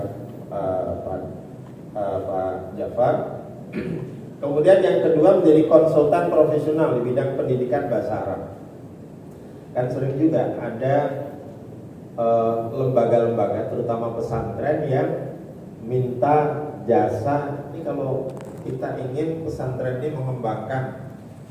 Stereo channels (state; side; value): identical; both; correlation 1.00